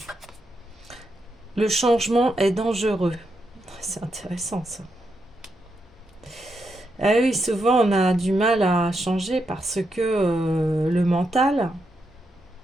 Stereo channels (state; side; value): normal; both; correlation 0.83